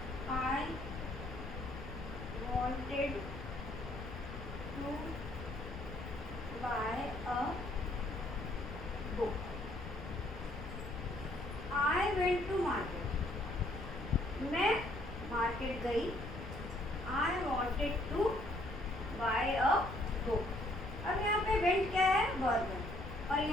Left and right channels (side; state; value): left; noise; rumble, 9 dB below the sound